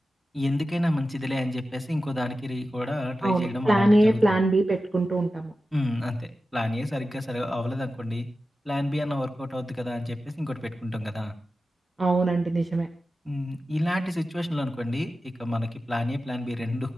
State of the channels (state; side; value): normal; both; correlation 0.93